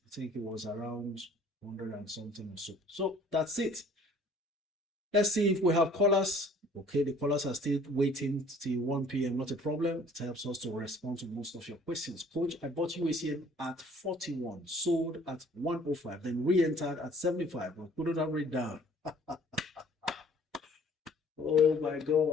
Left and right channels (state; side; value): normal; both; correlation 0.54